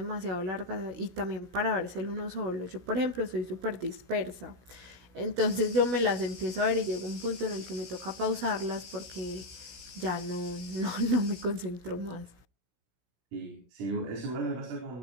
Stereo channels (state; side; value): late; left; 17 ms